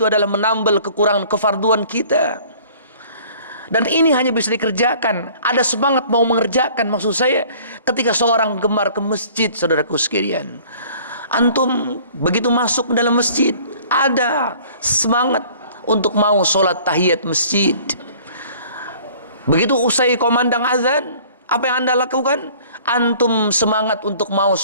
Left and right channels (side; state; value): both; inverted; correlation -0.51